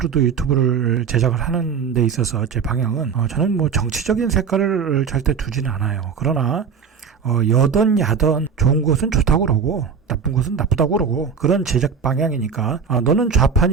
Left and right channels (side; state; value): left; quieter; 6.3 dB